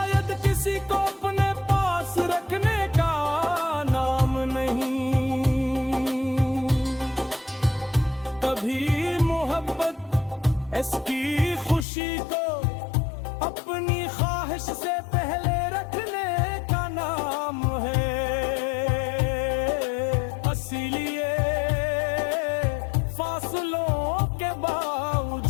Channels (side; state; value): right; drops out; at 11.9 s